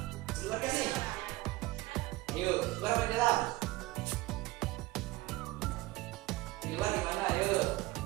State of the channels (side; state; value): left; quieter; 19.7 dB